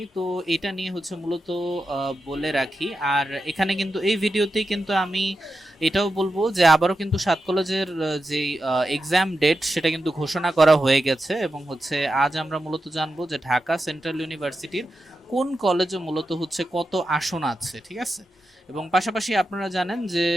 তো এটা নিয়ে হচ্ছে মূলত বলে রাখি। আর এখানে কিন্তু এই ভিডিওতেই কিন্তু আমি এটাও বলবো যে আবারও কিন্তু সাত কলেজের যে এক্সাম ডেট সেটা কিন্তু ঘোষণা করা হয়ে গেছে, এবং হচ্ছে আজ আমরা মূলত জানবো যে ঢাকা সেন্ট্রাল ইউনিভার্সিটির কোন কলেজে মূলত হচ্ছে কত আসন আছে, ঠিক আছে। এবং পাশাপাশি আপনারা জানেন যে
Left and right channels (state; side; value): normal; both; correlation 0.89